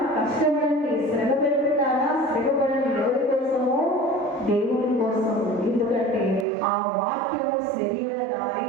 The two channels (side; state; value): left; drops out; at 6.5 s